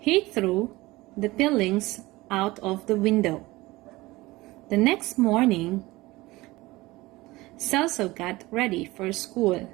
threw the peelings out of the window. The next morning, Celso got ready for school.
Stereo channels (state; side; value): quieter; left; 20.1 dB